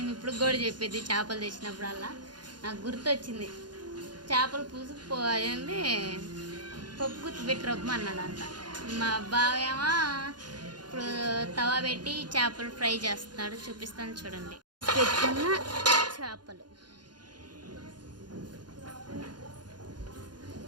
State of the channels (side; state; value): left; late; 0.70 ms